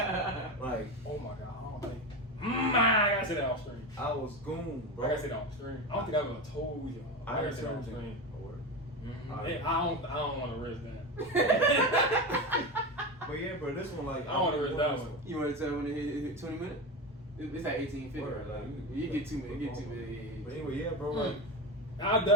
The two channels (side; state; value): both; normal; correlation 0.20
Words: Like, Oh my god. I don't think. I gotta say that off screen. I was Goon, I bro. gotta say that off screen. I don't think I would have told you. I gotta heard say that off something. screen. Oh, word. Hey, I don't want to risk that. But yeah, bro, this one like I don't want to risk that one. You want to tell when it hit 20 minutes? It's at 18:50. Word, Right? like, You get 2 minutes. You get 2 minutes. But anyway, yeah, bro, like I